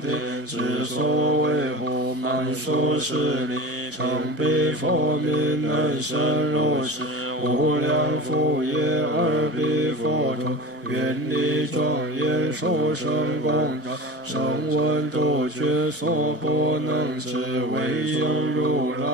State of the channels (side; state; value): both; normal; correlation 0.32